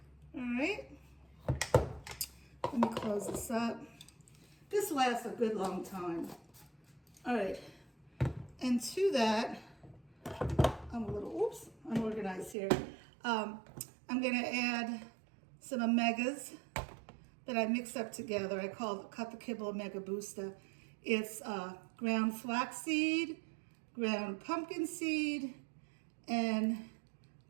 All right. Let me close this up. This lasts a good long time. All right. And to that, I'm a little, unorganized here. I'm going to add some omegas that I mixed up together. I cut the Kibble Omega Booster. It's ground flaxseed, ground pumpkin seed, and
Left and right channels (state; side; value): drops out; left; at 12.6 s